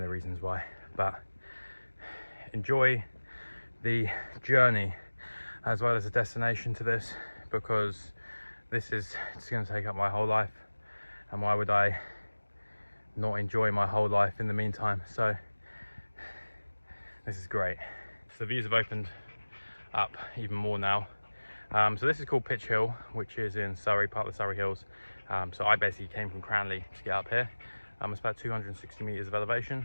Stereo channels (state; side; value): inverted; both; correlation -1.00